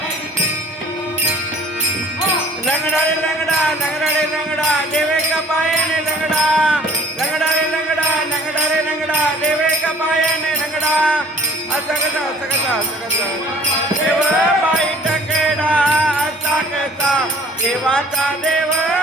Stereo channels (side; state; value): both; normal; correlation 0.51